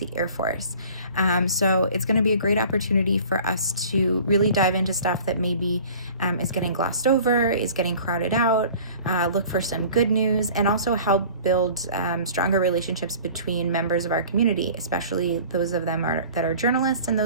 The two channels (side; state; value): both; inverted; correlation -0.46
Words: Air Force. So it's going to be a great opportunity for us to really dive into stuff that maybe is getting glossed over, is getting crowded out, look for some good news, and also help build stronger relationships between members of our community, especially those of them that are journalists and